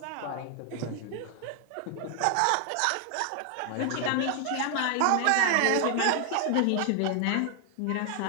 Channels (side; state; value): both; different; correlation 0.00